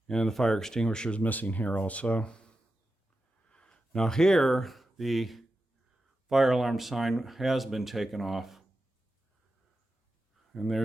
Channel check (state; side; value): normal; both; correlation 0.90